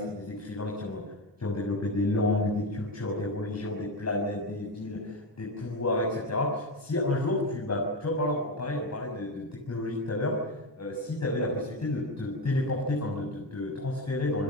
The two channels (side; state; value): both; normal; correlation 0.14